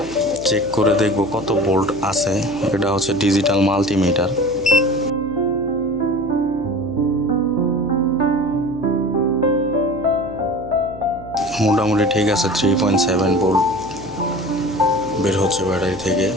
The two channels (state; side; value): noise; left; hum, 16 dB below the sound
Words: চেক করে দেখব কত ভোল্ট আছে। এটা হচ্ছে ডিজিটাল মাল্টিমিটার। মোটামুটি ঠিক আছে, 3.7 ভোল্ট বের হচ্ছে ব্যাটারি থেকে।